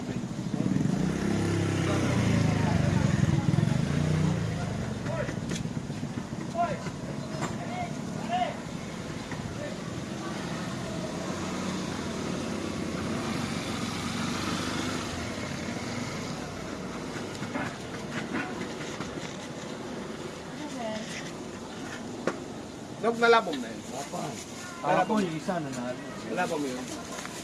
Nog, nalabom na yun. Ako yung isa na natin. Nalabom mo yun.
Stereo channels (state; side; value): identical; both; correlation 1.00